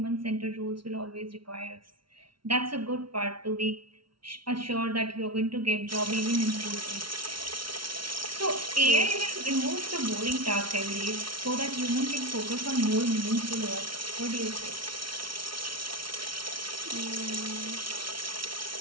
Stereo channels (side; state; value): left; late; 0.74 ms